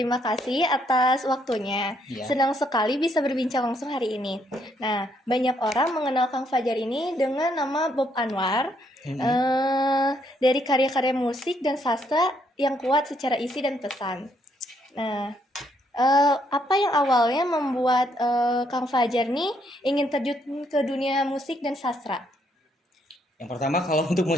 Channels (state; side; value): normal; both; correlation 0.72